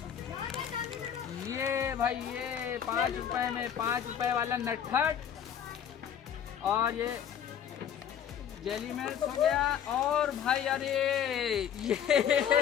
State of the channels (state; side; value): quieter; right; 8.9 dB